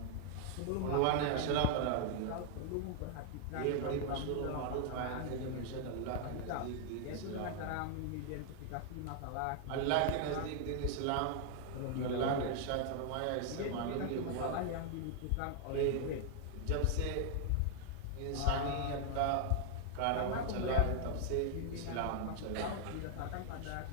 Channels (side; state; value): both; different; correlation 0.00